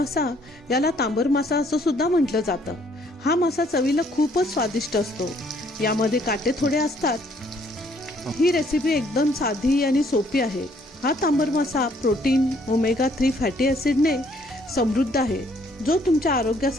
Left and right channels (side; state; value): both; normal; correlation 0.65